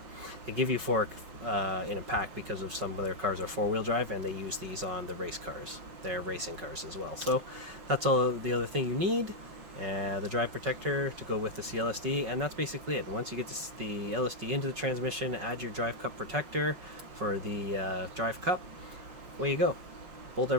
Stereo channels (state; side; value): late; left; 5.4 ms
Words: They give you 4 in a pack because of some of their cars are 4-wheel drive, and they use these on the race cars. They're racing cars as well. So that's all the other thing you need. The drive protector to go with the C-LSD, and that's basically it. Once you get the LSD into the transmission, add your drive cup protector for the drive cup. Away you go. Bolt